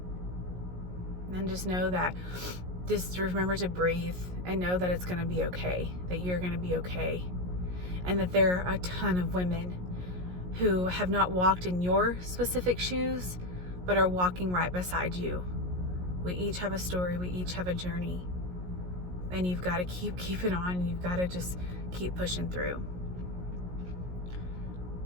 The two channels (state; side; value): late; left; 17 ms